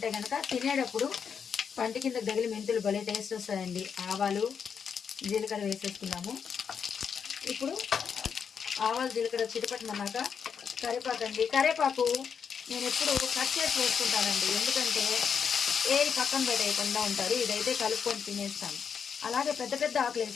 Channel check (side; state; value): right; quieter; 6.8 dB